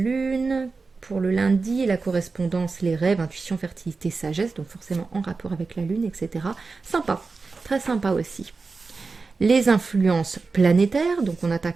pour le lundi, la correspondance, les rêves, intuition, fertilité, sagesse, donc forcément en rapport avec la lune, etc. Sympa, très sympa aussi. Les influences planétaires, donc on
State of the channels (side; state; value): left; quieter; 4.2 dB